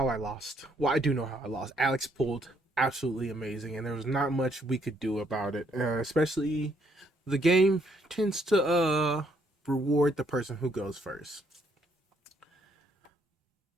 I lost. Well, I do know how I lost. Alex pulled absolutely amazing, and there was not much we could do about it. Especially the game tends to reward the person who goes first.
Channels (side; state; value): both; normal; correlation 0.70